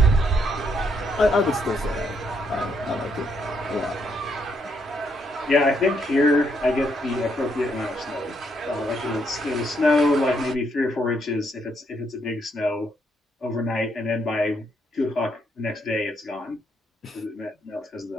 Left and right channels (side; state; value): both; normal; correlation 0.75